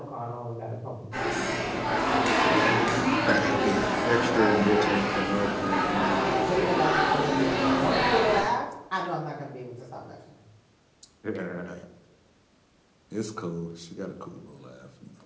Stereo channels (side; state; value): both; identical; correlation 1.00